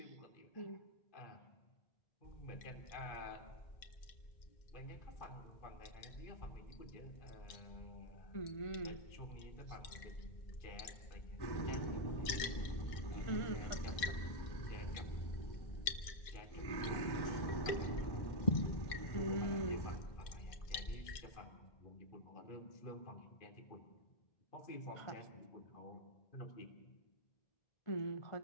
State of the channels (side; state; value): right; late; 2.1 ms